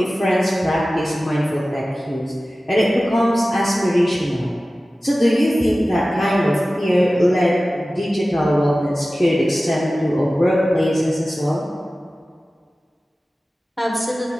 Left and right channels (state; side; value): normal; both; correlation 0.96